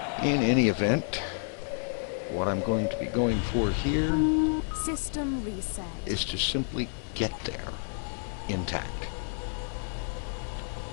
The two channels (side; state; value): right; silent; digital silence